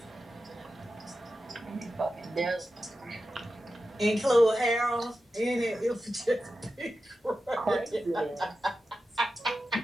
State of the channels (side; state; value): both; normal; correlation 0.92